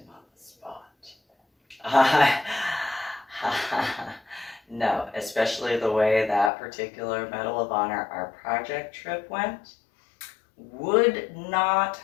on the spot. No, especially the way that particular Medal of Honor, our project trip went, would not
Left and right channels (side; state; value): right; drops out; at 6.5 s